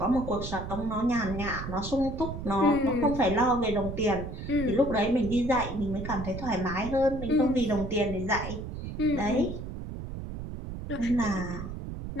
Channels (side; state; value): right; noise; rumble, 8 dB below the sound